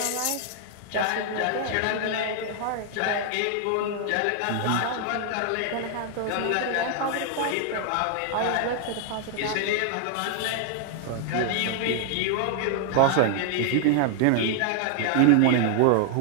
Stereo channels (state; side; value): different; both; correlation 0.00